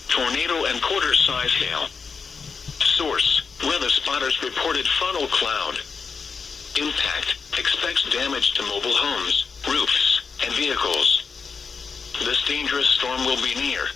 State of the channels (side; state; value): right; quieter; 5.3 dB